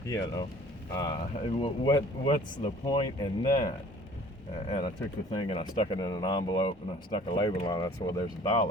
What's the point in that? And I took the thing and I stuck it in an envelope and I stuck a label on it. I said, well, there's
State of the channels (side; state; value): both; normal; correlation 0.51